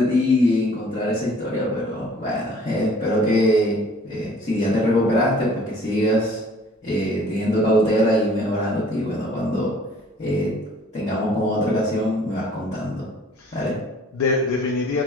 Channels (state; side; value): normal; both; correlation 0.53